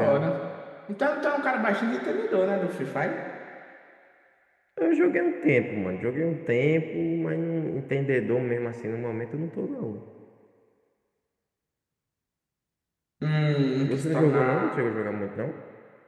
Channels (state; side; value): identical; both; correlation 1.00